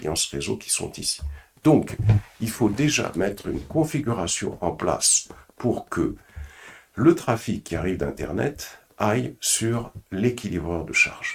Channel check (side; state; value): both; identical; correlation 1.00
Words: réseau qui sont ici. Donc, il faut déjà mettre une configuration en place pour que le trafic qui arrive d'Internet aille sur l'équilibreur de